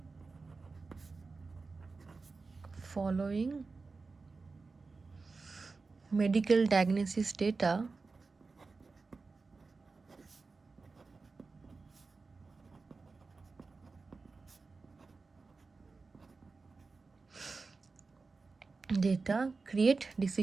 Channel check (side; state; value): left; quieter; 4.1 dB